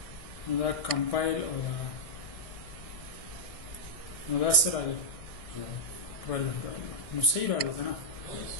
نو دا کمپایل او دا نو دا څه راغلی 12 راغلی نو صحیح راغلو که نه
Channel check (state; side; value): late; right; 1.6 ms